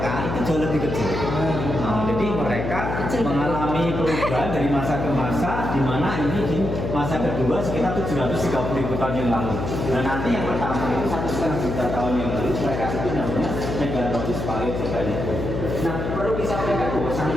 itu jauh lebih kecil. Jadi mereka mengalami perubahan dari masa ke masa, di mana ini di masa kedua sekitar 730.000 tahun yang lalu. Dan nanti yang pertama itu 1,5 juta tahun yang lalu mereka itu namanya Megalodon Paleozoic. Nah, perlu disampaikan bahwa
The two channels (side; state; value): left; noise; hum, 3 dB below the sound